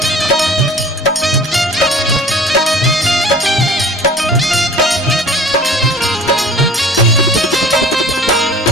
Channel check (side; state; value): both; normal; correlation 0.45